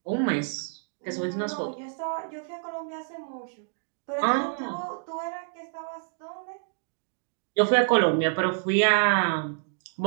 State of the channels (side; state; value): left; silent; digital silence